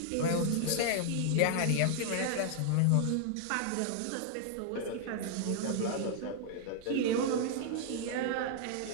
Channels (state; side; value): different; both; correlation 0.00